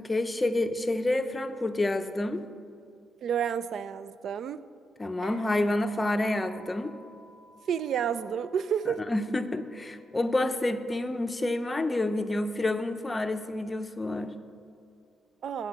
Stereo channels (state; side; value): normal; both; correlation 0.86